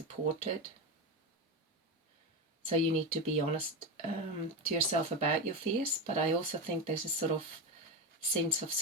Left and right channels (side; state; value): both; normal; correlation 0.17